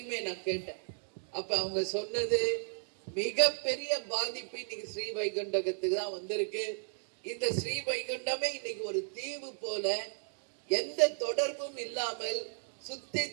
நான் கேட்டேன். அப்ப அவங்க சொன்னது, மிகப்பெரிய பாதிப்பு இன்னைக்கு ஸ்ரீ வைகுண்டத்துக்கு தான் வந்திருக்கு. இந்த ஸ்ரீ வைகுண்டமே இன்னைக்கு ஒரு தீவு போல, எந்த தொடர்பும் இல்லாமல் சுத்தி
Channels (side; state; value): left; silent; digital silence